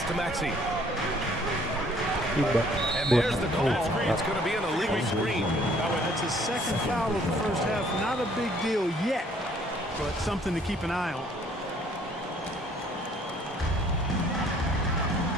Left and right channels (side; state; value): both; normal; correlation 0.60